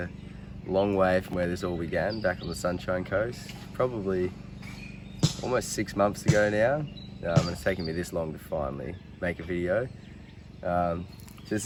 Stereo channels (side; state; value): both; identical; correlation 1.00